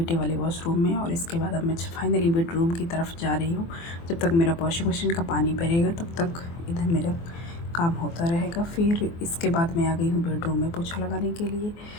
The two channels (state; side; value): late; right; 24 ms